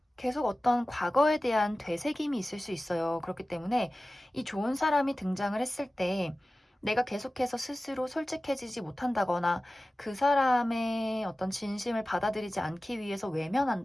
계속 어떤 과거에 대한 되새김이 있을 수 있어요. 그렇기 때문에 이 좋은 사람이 등장을 했을 때 내가 계속해서 스스로 솔직해지지 못한다거나 그 사람의 어떤 진심을 받아들이지 않기 위해서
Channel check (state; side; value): normal; both; correlation 0.96